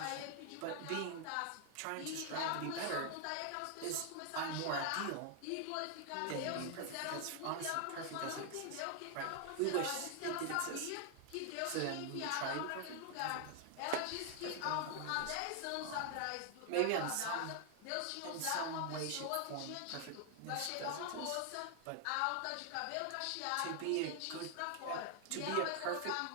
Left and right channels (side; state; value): both; different; correlation 0.00